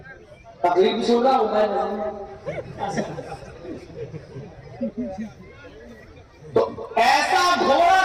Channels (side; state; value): both; identical; correlation 1.00